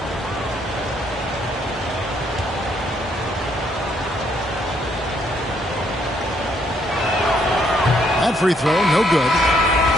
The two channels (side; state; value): both; normal; correlation 0.70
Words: Free throw, no good.